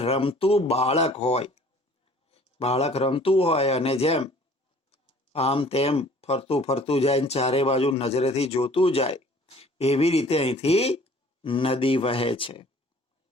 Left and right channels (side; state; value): both; normal; correlation 0.52